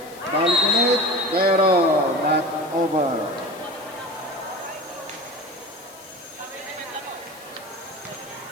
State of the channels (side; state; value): left; noise; hiss, 20 dB below the sound